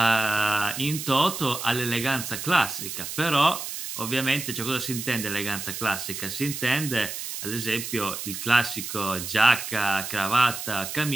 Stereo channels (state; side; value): noise; right; hiss, 7 dB below the sound